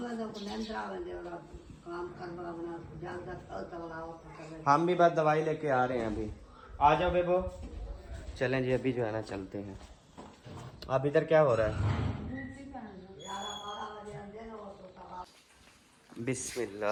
को निंद्रा बंदे वाला काम करवा बना जल्द तक हम भी बस दवाई लेके आ रहे हैं अभी। आ जाओ बेबो। चलें जी, अभी जो है ना चलते हैं। अब इधर क्या हो रहा है?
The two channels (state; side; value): identical; both; correlation 1.00